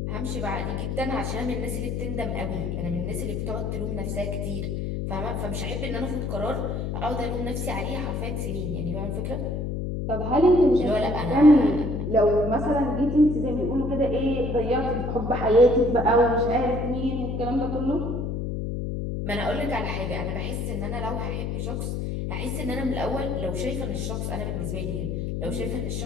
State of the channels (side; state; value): left; noise; hum, 2 dB below the sound